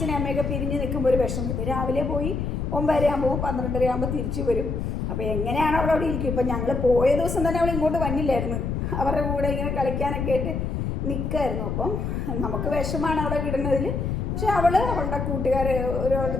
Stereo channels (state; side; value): noise; left; rumble, 2 dB below the sound